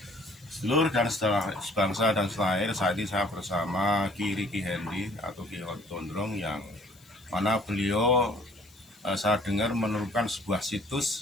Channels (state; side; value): noise; left; hiss, 27 dB below the sound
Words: Seluruh dan sebangsa dan selain saat ini saya bersama Ki Riki Hendy atau Ki Gondrong yang mana beliau saya dengar menemukan sebuah